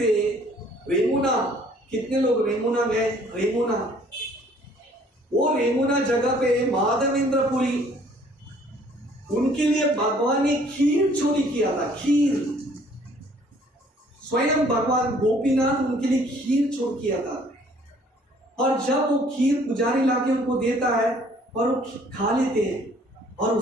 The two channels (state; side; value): normal; both; correlation 0.58